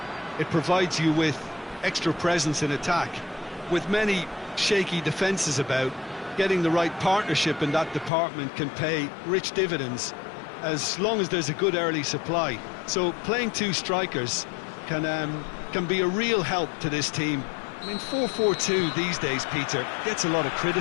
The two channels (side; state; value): right; drops out; at 8.1 s